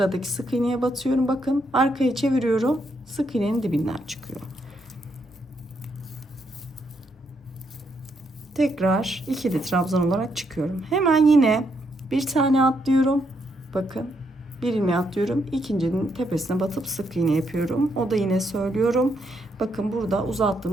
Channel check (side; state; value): both; normal; correlation 0.77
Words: sık iğneye batıyorum. Bakın arkaya çeviriyorum. Sık iğnenin dibinden çıkıyor. Tekrar ikili trabzan olarak çıkıyorum. Hemen yine bir tane atlıyorum. Bakın bir ilmeği atlıyorum. İkincinin tepesine batıp sık iğne yapıyorum. O da yine söylüyorum. Bakın burada